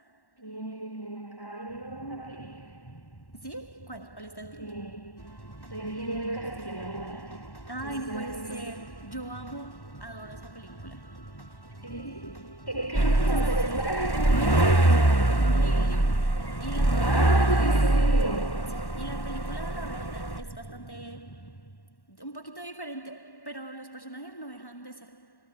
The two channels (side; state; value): right; late; 1.1 ms